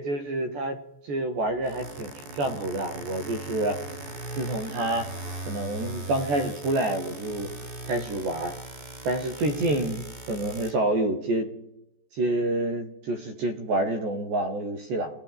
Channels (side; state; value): left; late; 14 ms